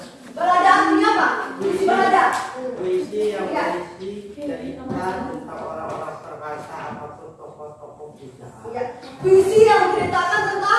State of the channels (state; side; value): identical; both; correlation 1.00